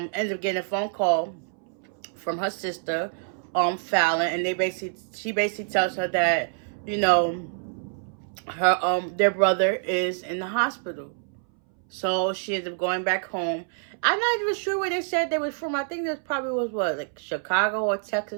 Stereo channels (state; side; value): silent; left; 61 dB below the other